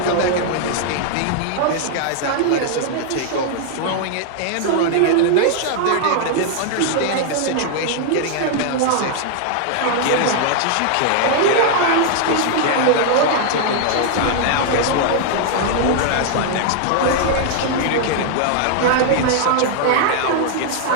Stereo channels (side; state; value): both; different; correlation 0.00